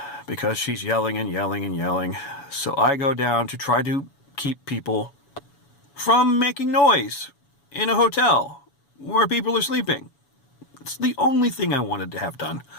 because she's yelling and yelling and yelling. So I go down to try to keep people from making noise in a hotel where people are sleeping. It's the only thing I wanted to have done.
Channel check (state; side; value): late; right; 7.1 ms